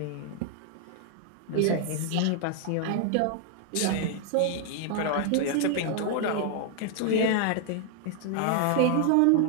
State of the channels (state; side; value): different; both; correlation 0.00